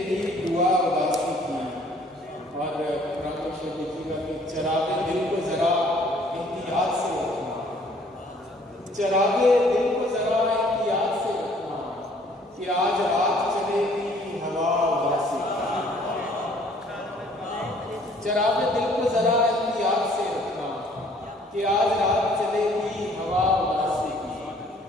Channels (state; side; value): normal; both; correlation 0.58